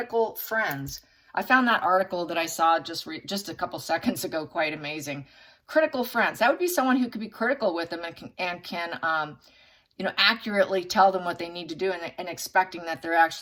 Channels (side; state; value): both; identical; correlation 1.00